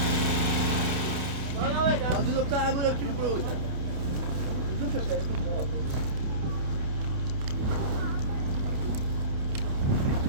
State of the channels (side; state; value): left; late; 29 ms